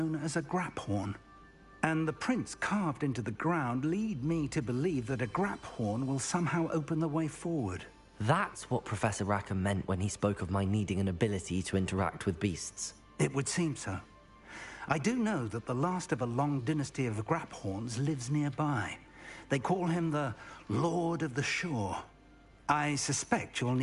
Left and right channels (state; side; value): identical; both; correlation 1.00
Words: as a graphorn. And the prints carved into the ground lead me to believe that a graphorn will somehow open the way forward. That's what Professor Rackham meant when he spoke of my needing an ability to interact with beasts. It would seem so. I do know that the last of a long dynasty of graphorns lives nearby. They call him the Lord of the Shore. I suspect you'll